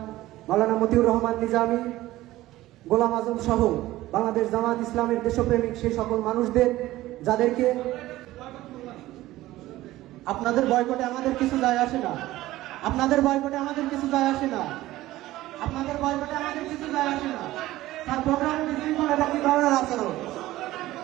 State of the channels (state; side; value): quieter; left; 16.4 dB